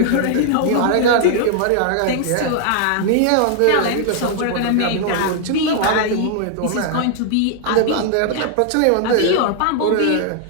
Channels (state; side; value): different; both; correlation 0.00